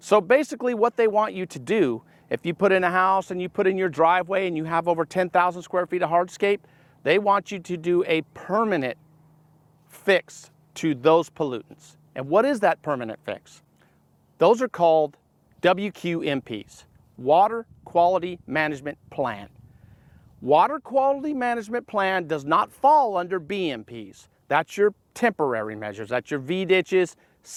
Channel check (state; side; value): identical; both; correlation 1.00